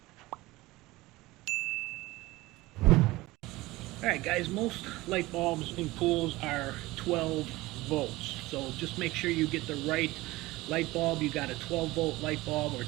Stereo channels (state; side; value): quieter; left; 19.5 dB